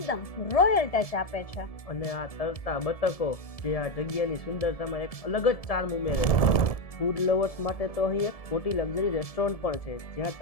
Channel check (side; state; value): right; late; 1.7 ms